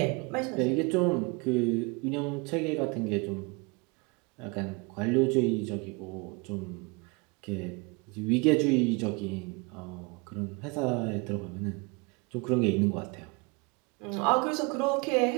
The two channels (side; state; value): left; quieter; 29.2 dB